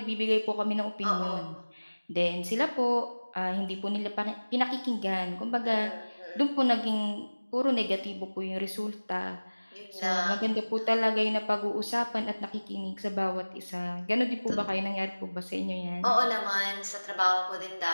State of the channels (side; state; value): both; inverted; correlation -1.00